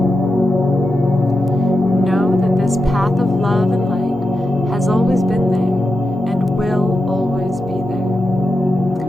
Know that this path of love and light has always been there and will always be there.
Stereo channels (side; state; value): both; normal; correlation 0.89